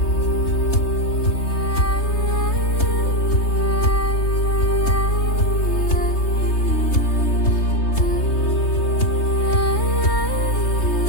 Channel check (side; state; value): right; late; 3.3 ms